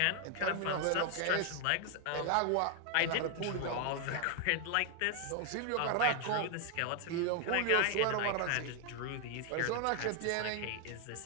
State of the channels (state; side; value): different; both; correlation 0.00